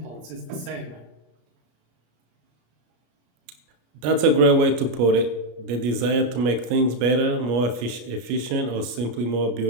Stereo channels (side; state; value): left; late; 33 ms